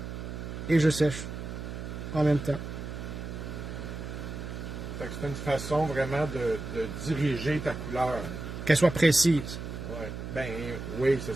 Et je sèche. En même temps. Fait que c'est une façon vraiment de diriger ta couleur. Qu'elle soit précise. Ouais. Ben, oui, c'est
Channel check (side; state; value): right; noise; hum, 7 dB below the sound